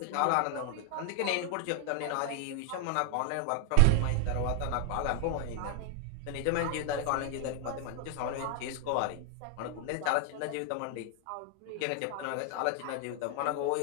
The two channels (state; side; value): different; both; correlation 0.00